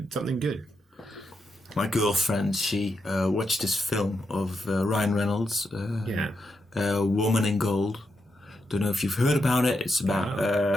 something good. My girlfriend, she watched this film of Ryan Reynolds, Woman in Gold. Don't know if you've heard about it. It's about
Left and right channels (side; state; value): both; normal; correlation 0.84